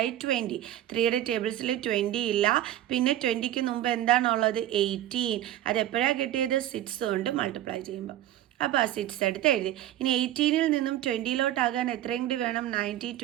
20. 3യുടെ ടേബിൾസിൽ 20 ഇല്ല. പിന്നെ 20ക്ക് മുമ്പ് എന്താണുള്ളത്? 18. അത് എപ്പോഴാണ് കിട്ടിയത്? 6 കൊണ്ട് മൾട്ടിപ്ലൈ ചെയ്യുമ്പോൾ. അപ്പോൾ ആ 6 എടുത്ത് എഴുതി. ഇനി 18ൽ നിന്നും 20ലോട്ടാകാൻ എത്രയും കൂടി വേണം? 90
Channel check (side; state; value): left; quieter; 13.0 dB